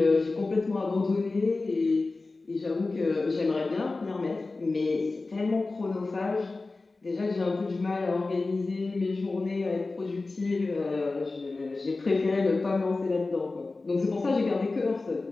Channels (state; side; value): quieter; right; 3.5 dB